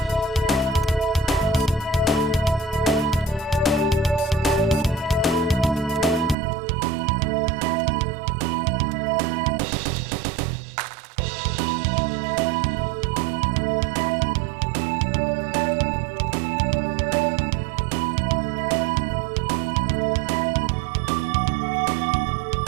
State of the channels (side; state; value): left; drops out; at 6.4 s